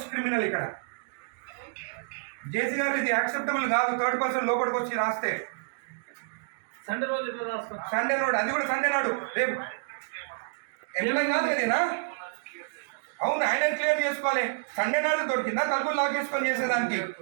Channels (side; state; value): left; silent; digital silence